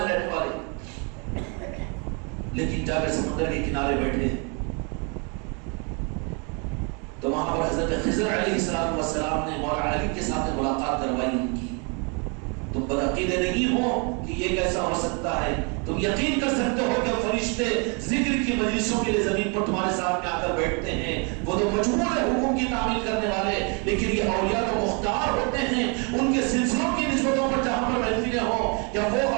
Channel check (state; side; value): quieter; left; 34.4 dB